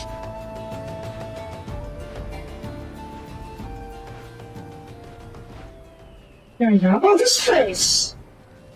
There we go. Oh, this place!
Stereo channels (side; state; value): both; identical; correlation 1.00